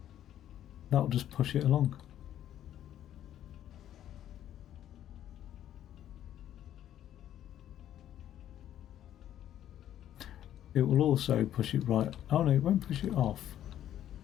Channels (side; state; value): right; quieter; 11.3 dB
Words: That'll just push it along. It will also push it right. Oh no, it won't push it off.